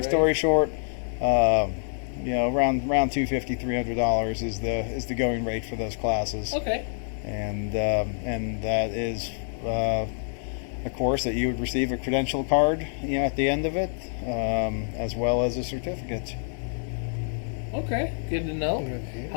story short, around $250, $300 is the going rate for those classes. Okay. And that is a course that you would receive a credential card, at the end of it, as well as a certificate. Okay, good to know.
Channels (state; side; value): silent; right; 60 dB below the other